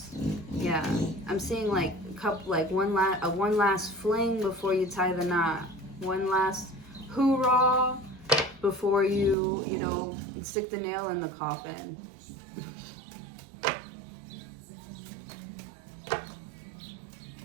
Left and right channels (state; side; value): drops out; left; at 9.3 s